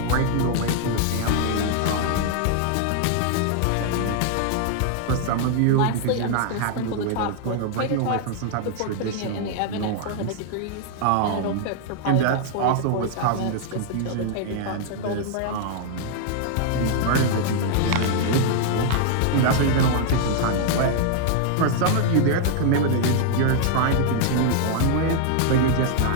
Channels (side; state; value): both; different; correlation 0.00